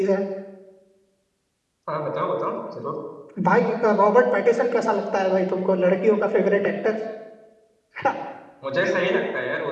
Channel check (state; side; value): identical; both; correlation 1.00